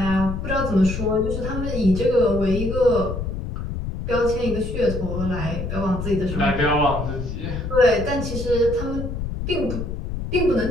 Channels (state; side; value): noise; left; rumble, 5 dB below the sound